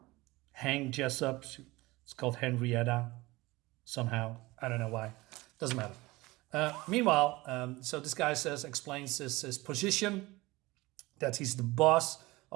Hank Jessup. It's called Henrietta somehow. I don't know why. Doesn't matter. Meanwhile, so this guy explains his position, that he's the boss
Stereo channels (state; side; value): quieter; left; 20.9 dB